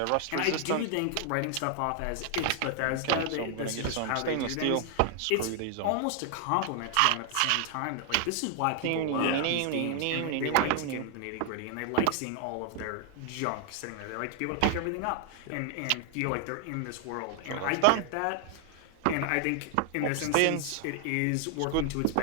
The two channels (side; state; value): both; different; correlation 0.00